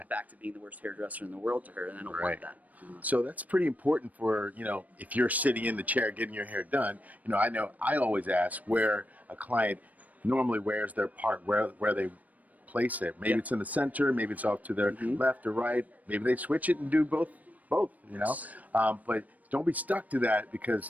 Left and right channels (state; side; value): late; left; 0.075 ms